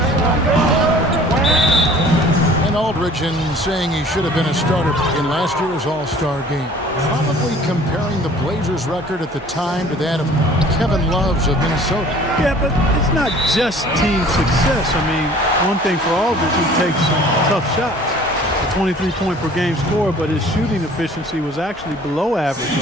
And Aldridge, in saying he should have been a starter in last year's All-Star game, probably comparing the Blazers record at the time to that of Kevin Love's of Minnesota. Yeah, but it's not just team success. I mean, one thing for Aldridge, he takes some tough shots. A 23-point per game score, but his shooting efficiency was actually below average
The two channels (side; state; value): both; normal; correlation 0.50